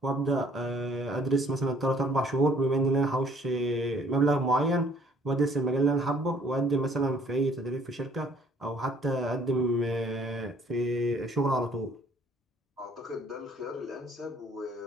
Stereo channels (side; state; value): both; normal; correlation 0.60